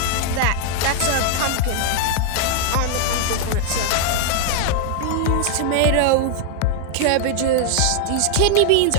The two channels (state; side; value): different; both; correlation 0.00